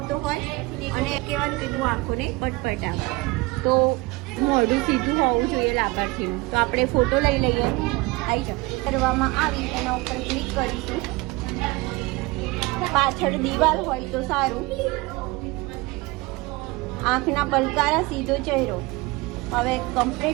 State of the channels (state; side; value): quieter; left; 22.9 dB